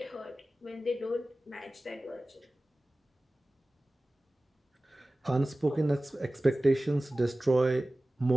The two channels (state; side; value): normal; both; correlation 0.97